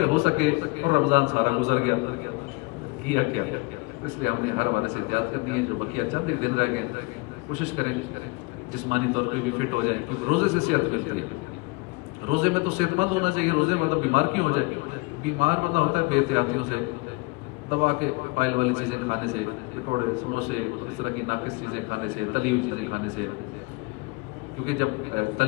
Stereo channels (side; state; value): right; quieter; 26.9 dB